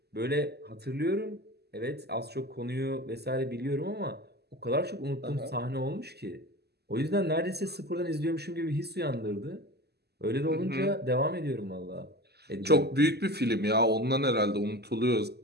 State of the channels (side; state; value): left; late; 0.47 ms